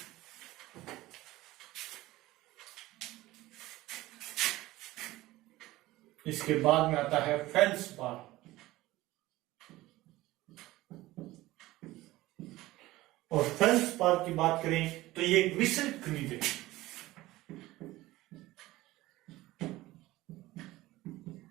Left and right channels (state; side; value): quieter; left; 17.7 dB